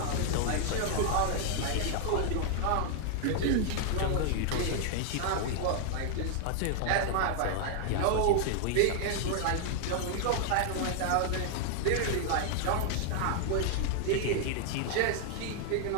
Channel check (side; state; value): both; different; correlation -0.01